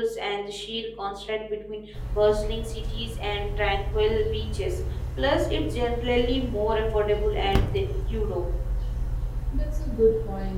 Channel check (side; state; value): both; identical; correlation 1.00